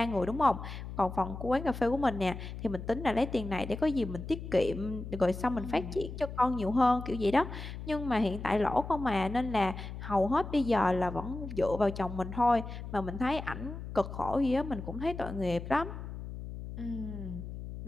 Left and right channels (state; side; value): noise; left; hum, 9 dB below the sound